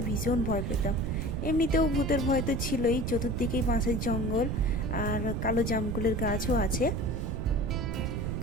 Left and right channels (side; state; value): right; noise; rumble, 2 dB below the sound